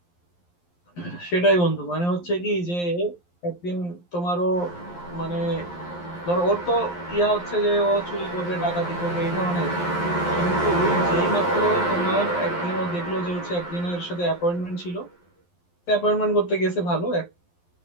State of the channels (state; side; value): late; right; 11 ms